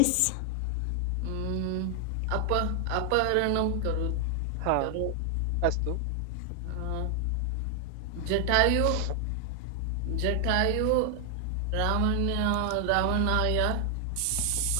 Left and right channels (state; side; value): different; both; correlation 0.00